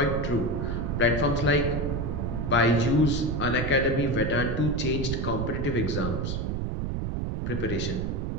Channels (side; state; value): right; noise; rumble, 2 dB below the sound